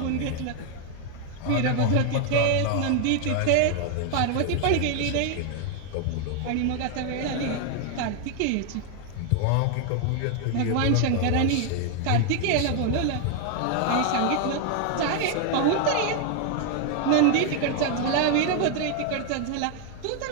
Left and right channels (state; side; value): different; both; correlation 0.00